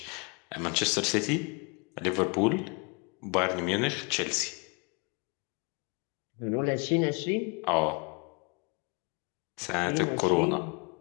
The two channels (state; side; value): quieter; right; 31.8 dB